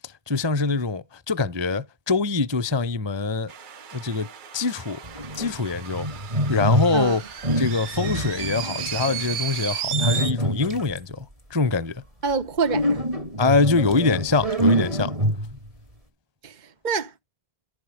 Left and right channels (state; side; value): late; left; 1.3 ms